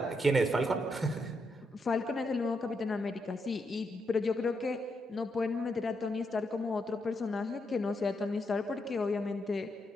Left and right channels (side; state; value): both; normal; correlation 0.81